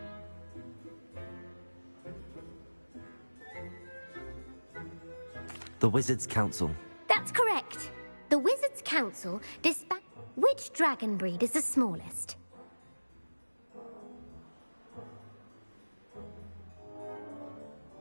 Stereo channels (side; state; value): both; inverted; correlation -1.00